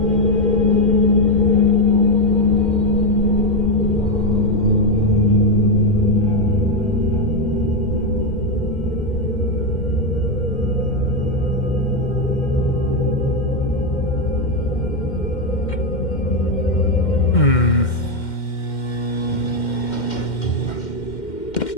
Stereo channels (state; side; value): late; right; 2.1 ms